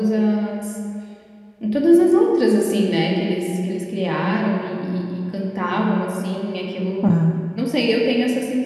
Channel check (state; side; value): identical; both; correlation 1.00